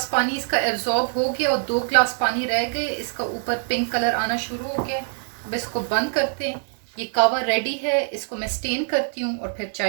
पानी इसका एब्जॉर्ब हो गया और 2 ग्लास पानी रह गए। इसका ऊपर पिंक कलर आना शुरू हो गया। अब इसको बंद करते हैं। ये कावा रेडी है, इसको मैं स्टेन करती हूँ और फिर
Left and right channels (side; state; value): left; silent; 63 dB below the other